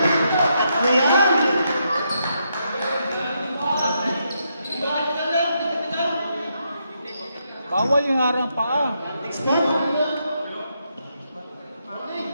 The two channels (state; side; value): inverted; both; correlation -0.80